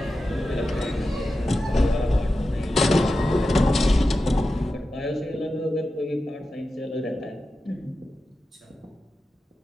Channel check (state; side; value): normal; both; correlation 0.92